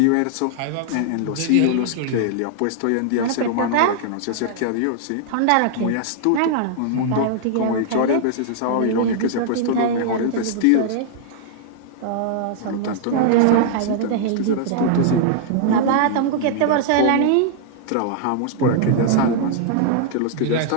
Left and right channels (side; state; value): both; different; correlation -0.01